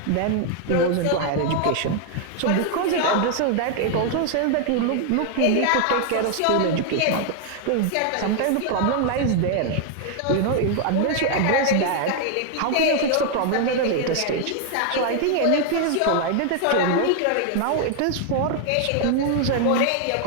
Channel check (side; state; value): both; different; correlation 0.00